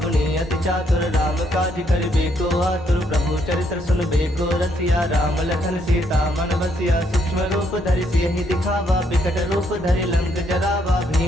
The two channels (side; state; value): both; normal; correlation 0.72